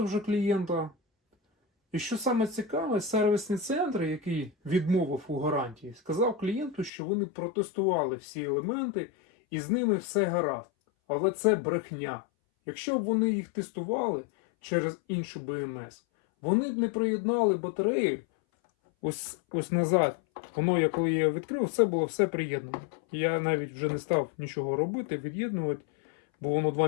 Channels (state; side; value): drops out; right; at 6.9 s